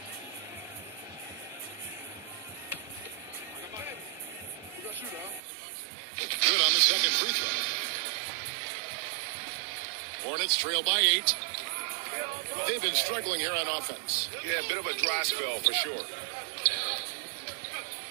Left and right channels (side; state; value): left; drops out; at 5.4 s